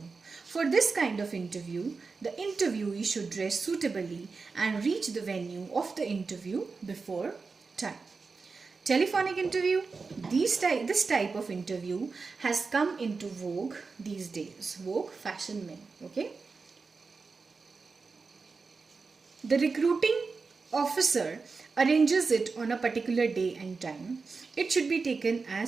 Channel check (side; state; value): left; quieter; 4.5 dB